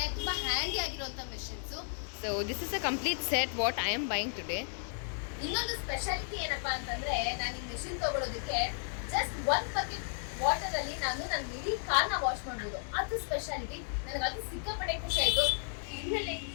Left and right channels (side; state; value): right; silent; 55 dB below the other